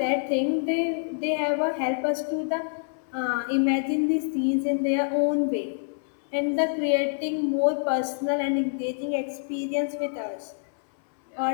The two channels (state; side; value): silent; right; 61 dB below the other